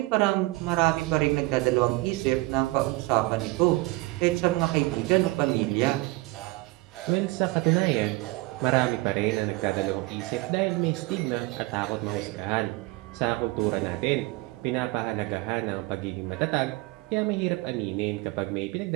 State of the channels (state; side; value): quieter; left; 22.3 dB